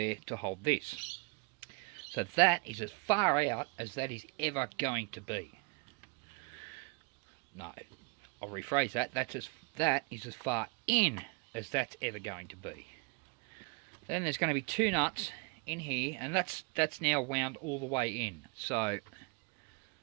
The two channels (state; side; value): quieter; left; 31.2 dB